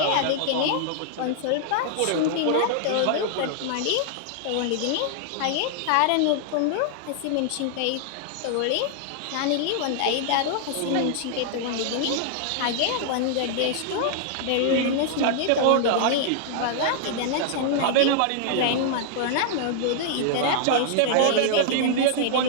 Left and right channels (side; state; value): both; different; correlation -0.01